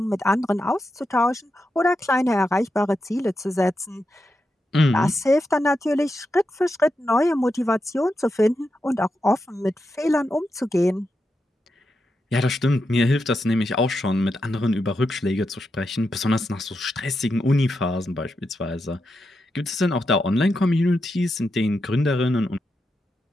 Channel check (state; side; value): normal; both; correlation 0.86